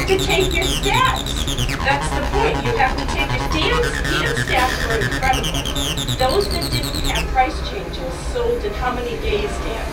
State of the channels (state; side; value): identical; both; correlation 1.00